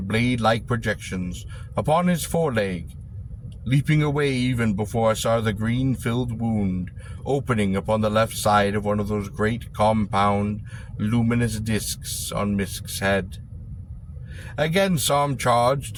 projections upon his foreleg, leaping away even before I saw the green-filled wound opening upon the left side of one of those great compound, luminous discs on Misk's head. Again Sarm charged,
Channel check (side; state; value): both; identical; correlation 1.00